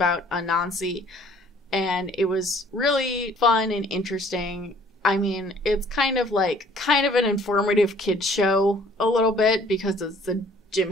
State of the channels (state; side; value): normal; both; correlation 0.57